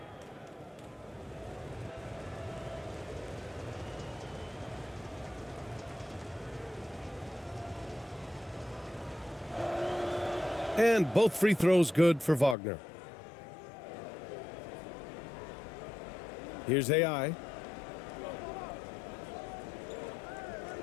And both free throws good for Wagner. Here's AI.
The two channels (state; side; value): drops out; right; at 12.6 s